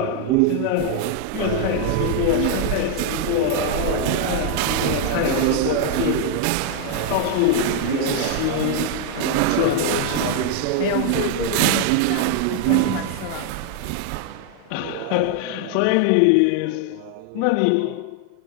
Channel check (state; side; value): different; both; correlation 0.00